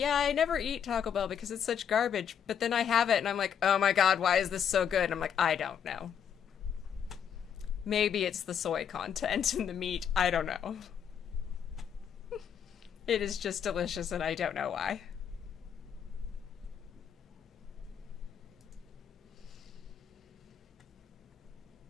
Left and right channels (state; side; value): quieter; right; 8.1 dB